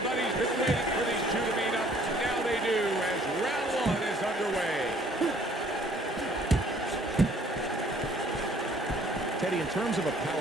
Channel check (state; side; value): normal; both; correlation 0.59